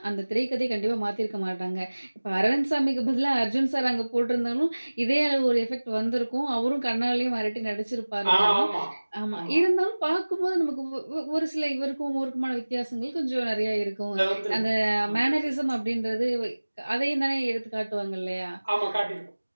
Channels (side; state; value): both; inverted; correlation -1.00